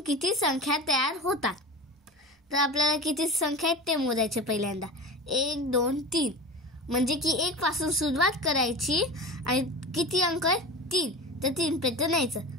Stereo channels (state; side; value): normal; both; correlation 0.30